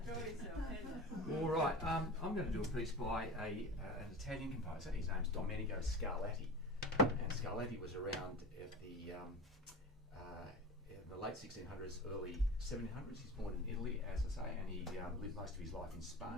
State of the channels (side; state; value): both; normal; correlation 0.32